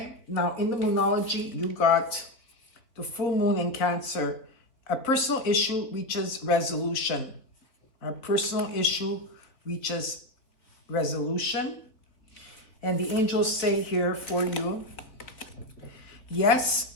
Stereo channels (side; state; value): right; late; 3.9 ms